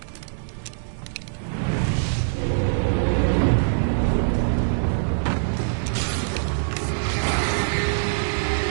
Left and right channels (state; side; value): silent; left; digital silence